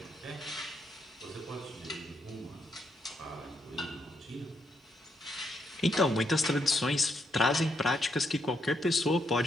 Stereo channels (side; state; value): both; normal; correlation 0.78